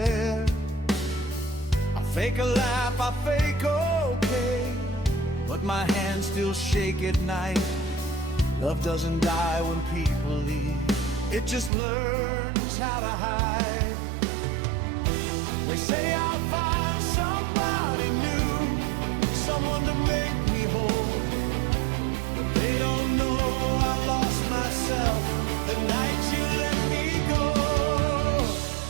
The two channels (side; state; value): left; drops out; at 11.7 s